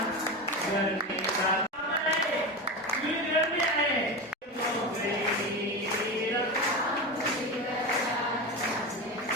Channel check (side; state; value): both; normal; correlation 0.22